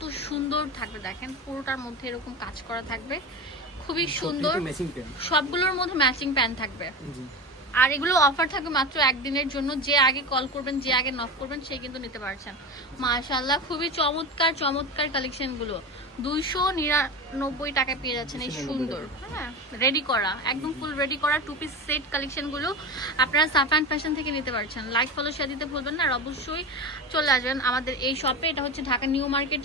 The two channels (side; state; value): both; normal; correlation 0.25